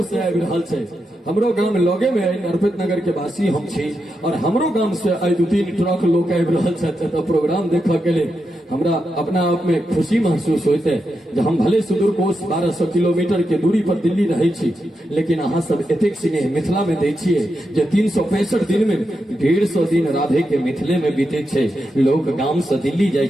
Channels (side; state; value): both; normal; correlation 0.86